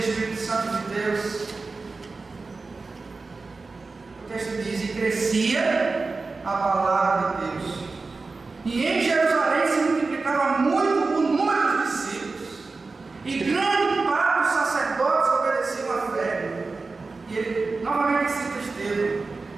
Santo de Deus, o texto diz: e crescia a palavra de Deus, e em Jerusalém se multiplicava muito o número dos discípulos, e grande parte dos sacerdotes obedeciam à fé. E ele novamente cita Estevão,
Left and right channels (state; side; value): quieter; left; 3.9 dB